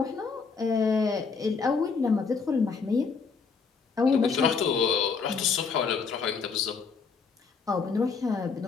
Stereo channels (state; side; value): quieter; right; 5.2 dB